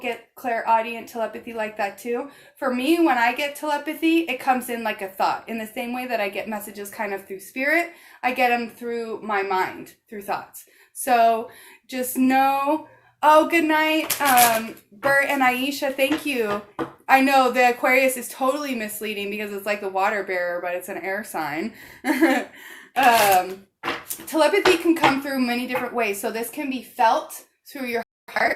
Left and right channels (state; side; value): identical; both; correlation 1.00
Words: clairaudient telepathy like that too. For me, when I get telepathy, it comes in like a thought. In the same way that I get messages kind of through spirit, I get them through my mind, through thoughts. So just know... Oh, good night, Bert and Aisha, thank you. I know the Aquarius is totally misleading because it's like the water bearer, but it's an air sign. Telepathy can come through many different ways. So this can be felt through your